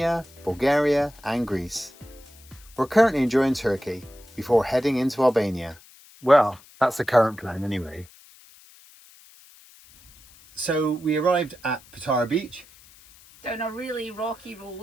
Bulgaria and Greece. We're currently enjoying Turkey before heading into Albania. Well, that's the current plan anyway. So we arrived at Patara Beach. Down a really rocky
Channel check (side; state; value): left; noise; hiss, 24 dB below the sound